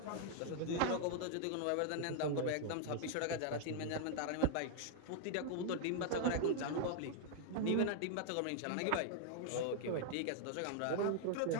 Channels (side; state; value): both; different; correlation 0.00